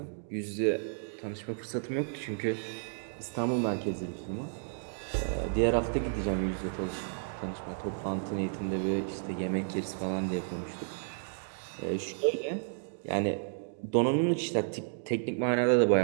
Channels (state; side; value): silent; left; digital silence